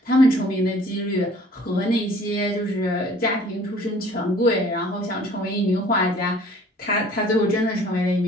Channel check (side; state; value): both; normal; correlation 0.52